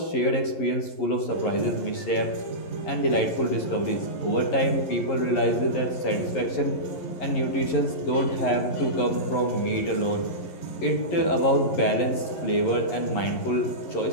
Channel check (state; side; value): late; right; 11 ms